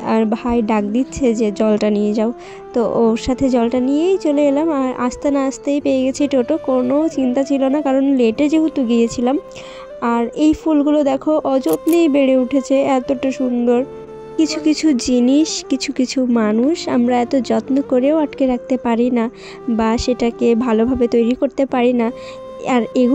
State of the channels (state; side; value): identical; both; correlation 1.00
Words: আর ভাই ডাক দিচ্ছে যে জলটা নিয়ে যাও, তো ওর সাথে জলটা নিয়েই চলে এলাম। আর আসতে না আসতেই পেয়ে গেছি টোটো, কোনো চিন্তা ছিল না কারণ লেটে যেহেতু গিয়েছিলাম। আর এই ফুলগুলো দেখো অযত্নেই বেড়ে উঠেছে, এতটা সুন্দর। কিছু কিছু জিনিস, কিছু কিছু মানুষ আমরা এত যত্ন করেও আটকে রাখতে পারি না বা সেটাকে ভালোভাবে তৈরি করতে পারি না, আর